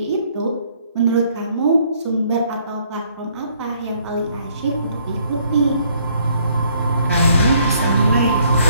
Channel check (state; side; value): inverted; both; correlation -0.65